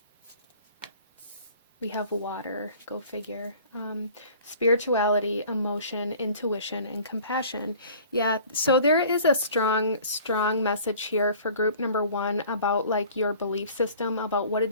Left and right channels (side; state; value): both; inverted; correlation -0.48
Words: We have water, go figure. Spirituality, emotion, intuition, and compassion. Yeah, so there is a strong message here for group number one about like your belief system, about what it